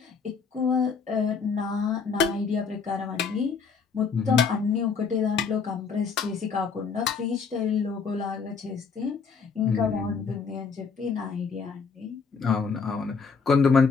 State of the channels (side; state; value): right; quieter; 5.5 dB